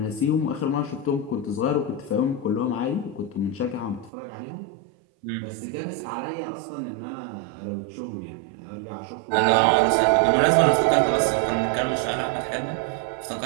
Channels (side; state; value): left; drops out; at 4.1 s